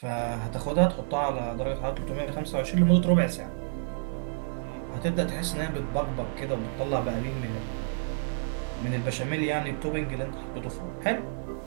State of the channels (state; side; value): silent; left; digital silence